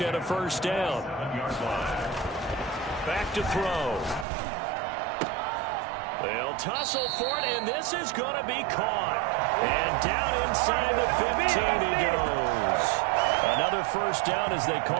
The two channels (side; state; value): left; drops out; at 4.2 s